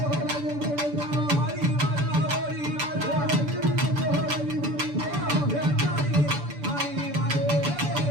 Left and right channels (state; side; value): late; left; 6.9 ms